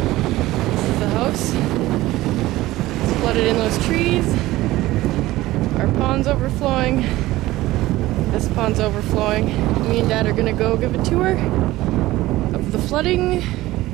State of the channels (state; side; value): quieter; left; 17.3 dB